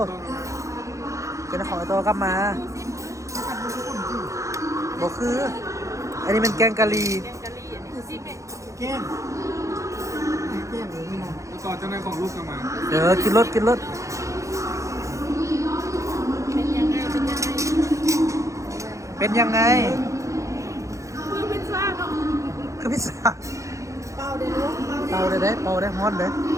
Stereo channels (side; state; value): left; late; 0.15 ms